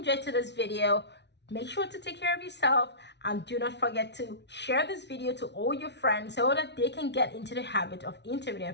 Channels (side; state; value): right; late; 0.50 ms